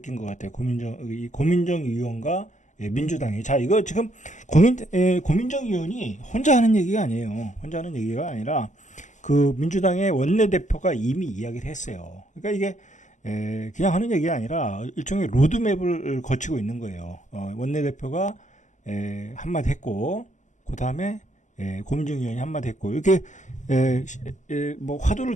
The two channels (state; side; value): late; right; 0.35 ms